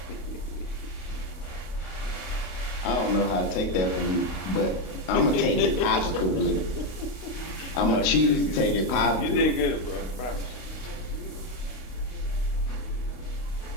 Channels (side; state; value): right; late; 31 ms